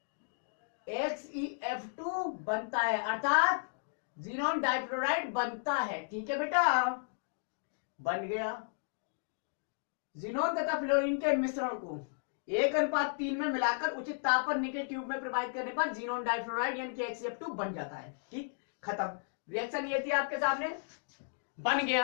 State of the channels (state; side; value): silent; right; digital silence